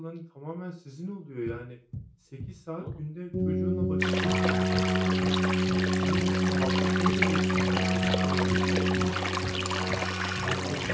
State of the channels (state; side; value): identical; both; correlation 1.00